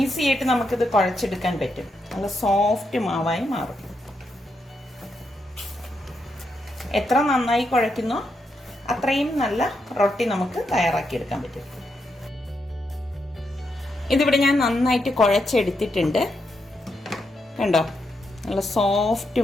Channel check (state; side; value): normal; both; correlation 0.82